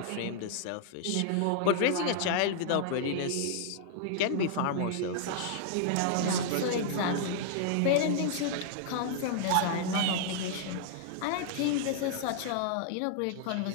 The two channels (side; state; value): both; different; correlation -0.01